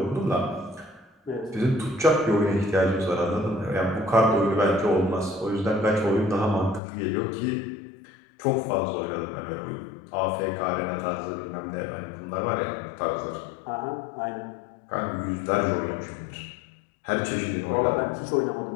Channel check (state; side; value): drops out; right; at 6.8 s